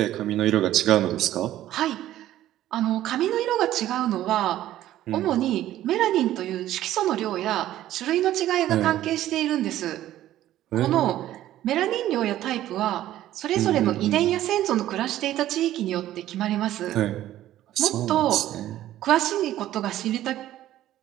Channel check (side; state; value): left; quieter; 13.4 dB